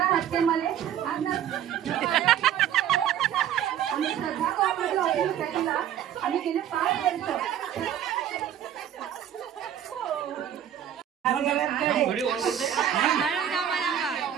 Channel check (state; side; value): quieter; left; 10.1 dB